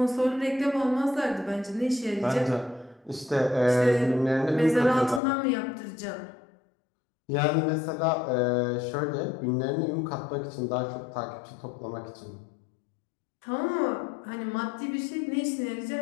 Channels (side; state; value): right; drops out; at 5.2 s